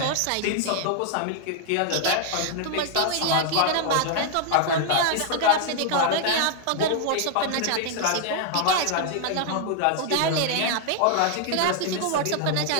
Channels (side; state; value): both; different; correlation 0.00